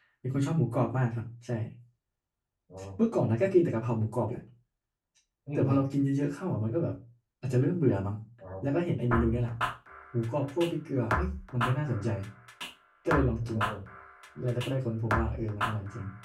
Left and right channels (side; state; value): both; identical; correlation 1.00